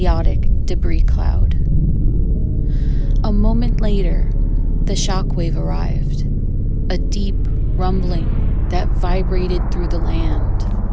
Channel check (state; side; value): identical; both; correlation 1.00